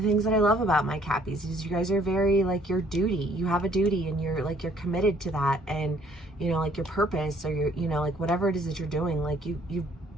the things that I love about my Cappies is you guys are very like your duty. You have a duty and you're committed to that, and you know, like your purpose, or your, you know, like whatever it is that you're doing, like you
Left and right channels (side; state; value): both; normal; correlation 0.62